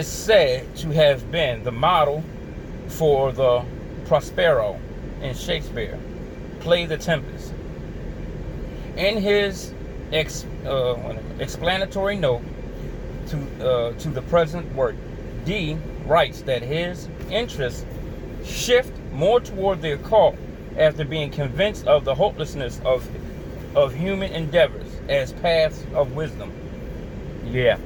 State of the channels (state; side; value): identical; both; correlation 1.00